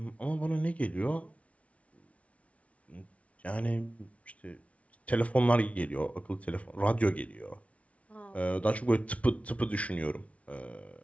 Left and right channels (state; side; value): late; right; 0.065 ms